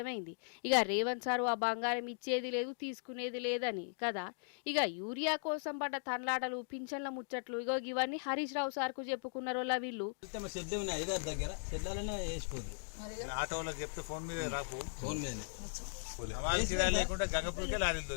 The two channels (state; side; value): silent; right; digital silence